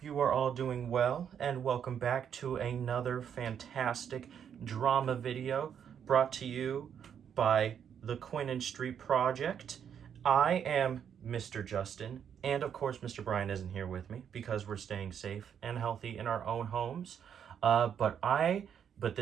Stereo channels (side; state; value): left; quieter; 8.3 dB